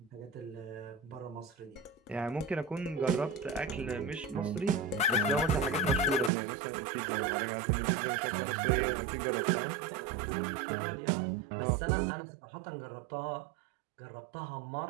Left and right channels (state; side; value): drops out; left; at 6.3 s